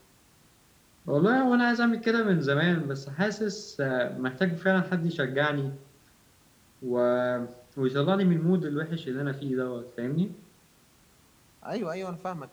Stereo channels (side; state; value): both; identical; correlation 1.00